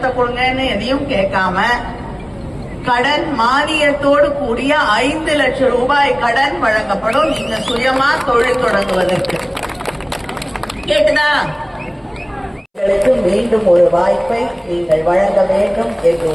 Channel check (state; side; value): identical; both; correlation 1.00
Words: கொடுங்கன்னு எதையும் கேட்காம கடன் மானியத்தோடு கூடிய 5 லட்சம் ரூபாய் கடன் வழங்கப்படும். நீங்க சுயமா தொழில் தொடங்குவதற்கு. கேட்டுதா? மீண்டும் ஒரு வாய்ப்பை நீங்கள் வழங்க வேண்டும் என்று